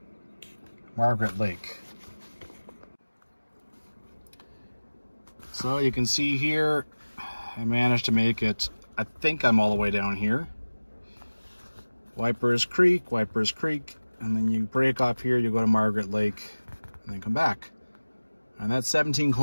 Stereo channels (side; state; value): both; inverted; correlation -1.00